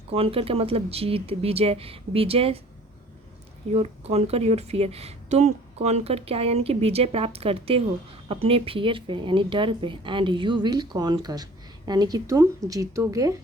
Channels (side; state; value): both; normal; correlation 0.49